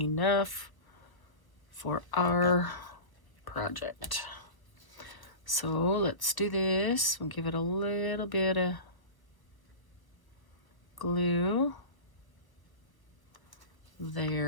for our project. So let's do this. We'll give it a little bit of glue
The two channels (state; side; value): late; right; 1.1 ms